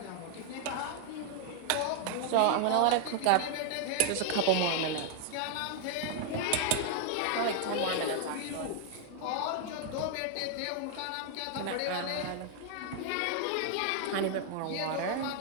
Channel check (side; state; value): both; different; correlation 0.00